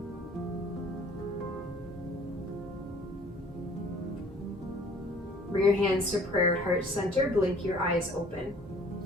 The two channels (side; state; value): both; normal; correlation 0.53